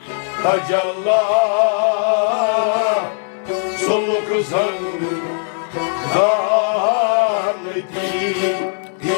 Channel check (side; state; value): right; silent; digital silence